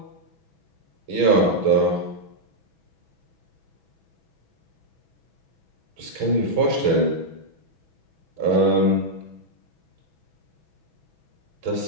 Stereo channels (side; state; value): left; late; 6.1 ms